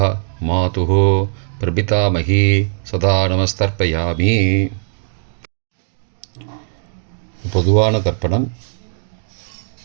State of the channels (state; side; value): silent; left; digital silence